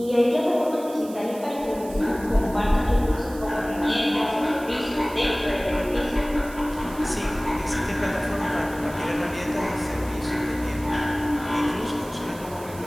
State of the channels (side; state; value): right; noise; hiss, 18 dB below the sound